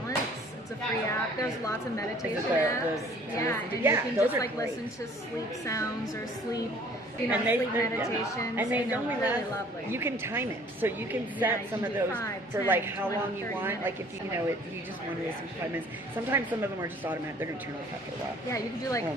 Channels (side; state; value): both; normal; correlation 0.54